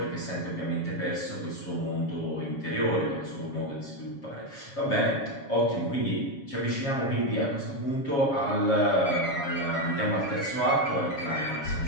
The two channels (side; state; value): right; late; 7.3 ms